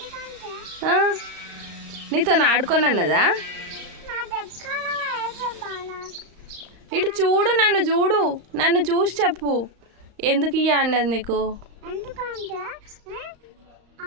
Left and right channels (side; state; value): left; late; 35 ms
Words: నీతో ఆడుకోనన్నదా? ఇటు చూడు, నన్ను చూసి చెప్పు ఎందుకు ఇయ్య అన్నది నీకు.